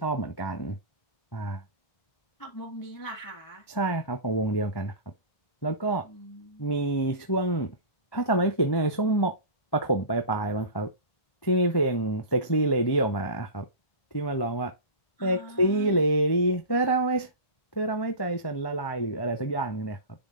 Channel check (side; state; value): right; late; 1.1 ms